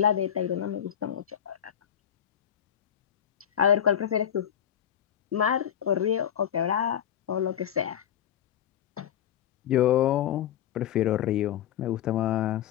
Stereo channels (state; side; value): quieter; right; 9.8 dB